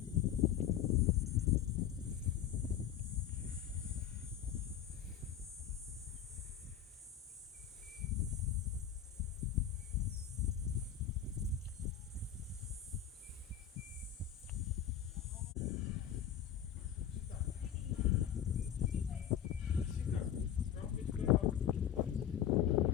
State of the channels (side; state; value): right; quieter; 9.8 dB